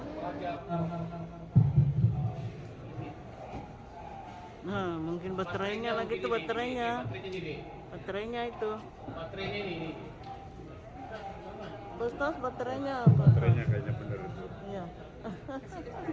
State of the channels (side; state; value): both; identical; correlation 1.00